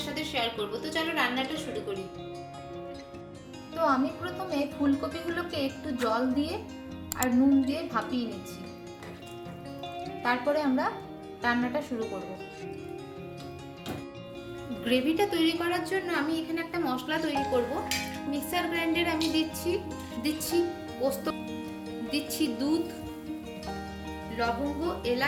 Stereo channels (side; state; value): both; identical; correlation 1.00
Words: সাথে শেয়ার করব। তো চলো রান্নাটা শুরু করি। তো আমি প্রথমে ফুলকপিগুলোকে একটু জল দিয়ে আর নুন দিয়ে ভাপিয়ে নিচ্ছি, তারপরে আমরা রান্নাটা শুরু করব। গ্রেভিটা তৈরি করার জন্য আমি এখানে একটা মশলা তৈরি করব। মিক্সার গ্রাইন্ডারে আমি দিচ্ছি পোস্ত, দিচ্ছি দুধ, লবঙ্গ,